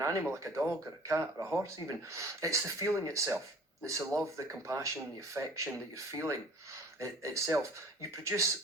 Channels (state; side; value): normal; both; correlation 0.48